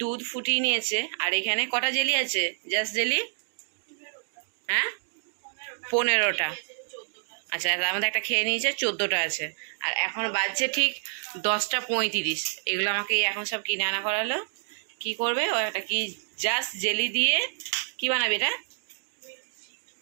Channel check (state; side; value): silent; left; digital silence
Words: দুধ ফুটিয়ে নিয়েছে, আর এখানে কটা জেলি আছে? জাস্ট জেলি, হ্যাঁ 15টা। আচ্ছা, তার মধ্যে একটা খেয়ে নিয়েছে, 14টা আছে। আর এখন বাজছে ঠিক 10:35। এগুলো আমাকে এখন সব কিনে আনা করালো। কি করবে ও? একটা কি জাস্ট জেলি দিয়ে কি বানাবে এটা?